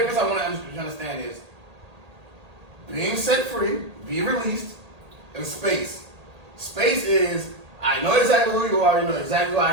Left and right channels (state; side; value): late; left; 1.8 ms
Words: I want to understand is being set free, be released, and space. Space is I know exactly who you are, you know exactly who